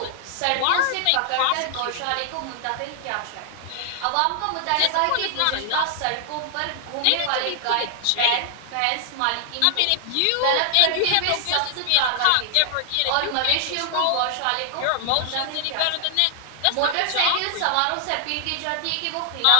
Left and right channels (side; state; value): both; different; correlation 0.00